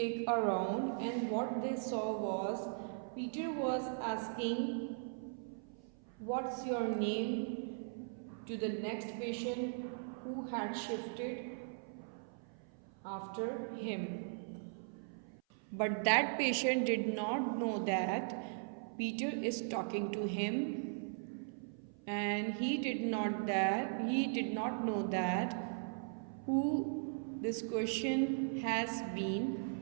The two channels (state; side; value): silent; left; 52 dB below the other